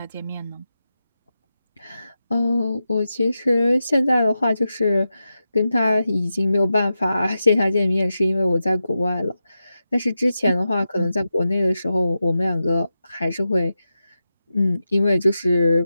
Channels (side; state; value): both; inverted; correlation -0.90